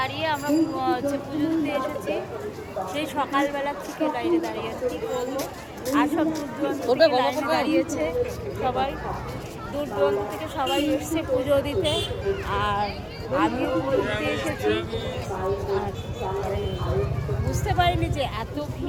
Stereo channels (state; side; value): identical; both; correlation 1.00